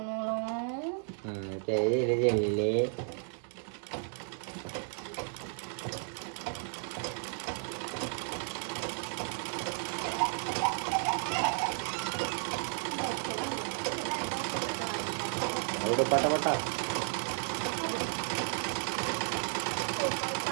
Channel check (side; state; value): left; silent; 55 dB below the other